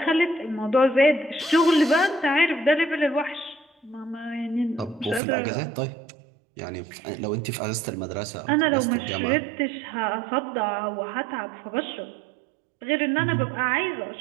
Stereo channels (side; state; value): left; drops out; at 5.2 s